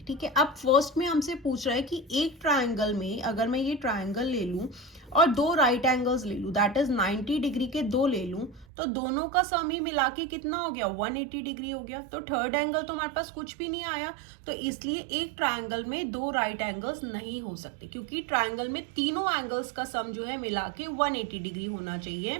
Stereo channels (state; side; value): drops out; left; at 8.7 s